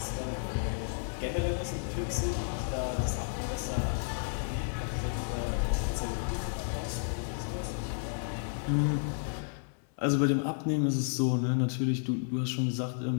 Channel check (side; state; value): right; silent; 56 dB below the other